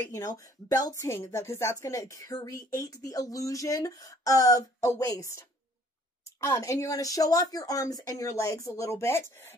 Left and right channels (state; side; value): normal; both; correlation 0.58